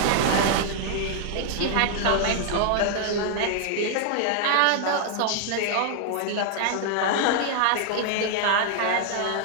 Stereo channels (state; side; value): different; both; correlation 0.00